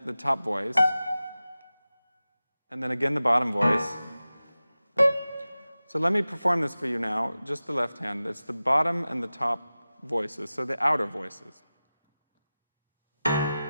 the top voice, and then again the bottom voice. So let me perform this for you now, just the left hand. It's the bottom and the top voices, so the outer voices.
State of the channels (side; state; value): both; inverted; correlation -0.96